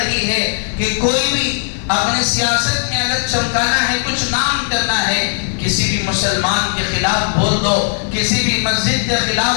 ہے کہ کوئی بھی اپنے سیاست میں اگر چمکانا ہے، کچھ نام کرنا ہے، کسی بھی مسلمان کے خلاف بول دو، کسی بھی مسجد کے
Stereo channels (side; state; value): right; silent; 57 dB below the other